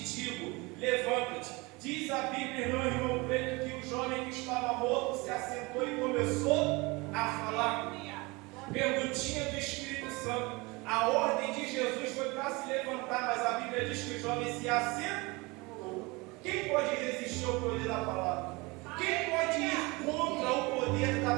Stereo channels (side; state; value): left; quieter; 25.1 dB